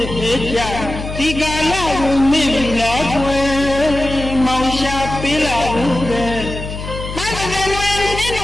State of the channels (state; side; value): noise; left; hum, 8 dB below the sound